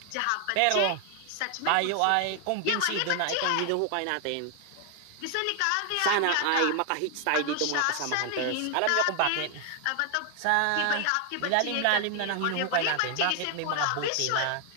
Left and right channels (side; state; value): both; different; correlation 0.00